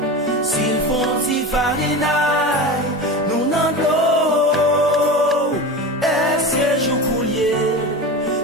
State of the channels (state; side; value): normal; both; correlation 0.27